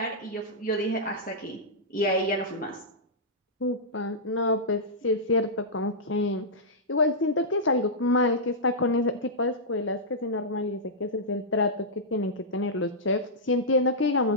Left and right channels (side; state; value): both; normal; correlation -0.12